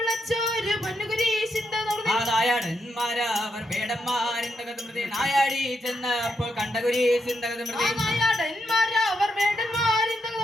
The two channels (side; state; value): both; normal; correlation 0.82